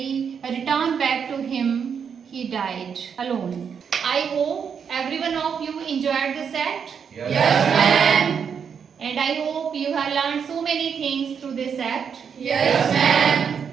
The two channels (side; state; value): left; quieter; 7.0 dB